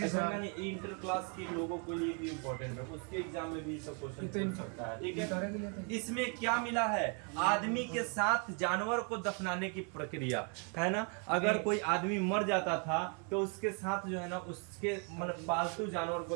ऐसा नहीं, इंटर क्लास के लोगों के लिए भी इम्पोर्टेंट है, उसके एग्जाम में भी सब क्वेश्चन पूछ सकता है, ठीक है। इसमें क्या मिला है, आदमी के साथ जानवर को दफनाने की प्रक्रिया, है ना। अगर कोई आदमी मर जाता था तो उसके साथ जो है ना उसके मतलब पालतू जानवर को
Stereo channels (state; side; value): quieter; left; 38.1 dB